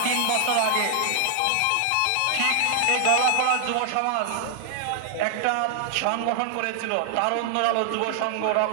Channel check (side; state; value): both; different; correlation 0.00